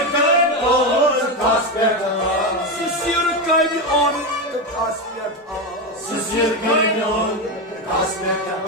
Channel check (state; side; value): normal; both; correlation 0.13